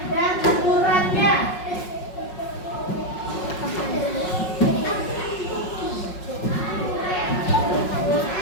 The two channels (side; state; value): right; late; 5.5 ms